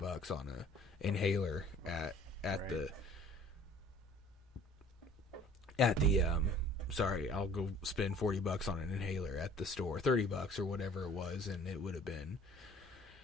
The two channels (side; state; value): both; normal; correlation 0.52